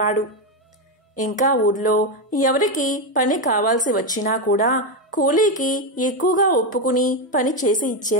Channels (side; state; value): both; normal; correlation 0.08